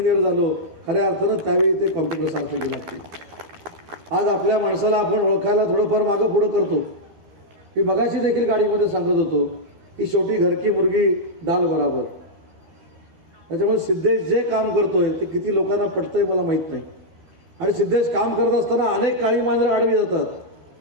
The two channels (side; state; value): left; late; 12 ms